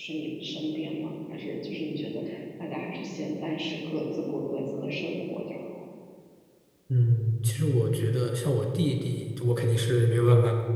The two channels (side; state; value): both; identical; correlation 1.00